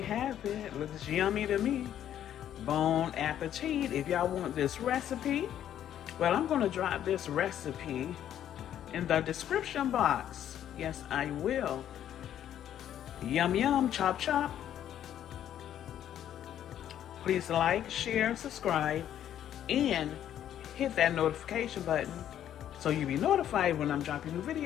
have it. Looks yummy to me. Bon appetit. If y'all want this recipe, well, I'm going to drop this recipe in the description box. Yes, I will. Yum, yum, chop, chop. Please like, share, subscribe, and hit that notification button so you'll be notified when I'm dropping new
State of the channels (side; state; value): right; quieter; 10.7 dB